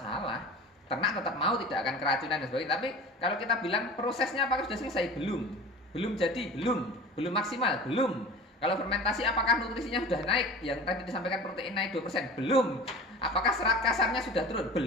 Ternak tetap mau, tidak akan keracunan dan sebagainya. Tapi kalau kita bilang prosesnya apakah sudah selesai? Belum jadi, belum maksimal, belum. Kalau fermentasi apakah nutrisinya sudah naik? Yang tadi disampaikan protein naik 2%? Belum. Apakah serat kasarnya sudah turun?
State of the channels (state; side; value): normal; both; correlation 0.37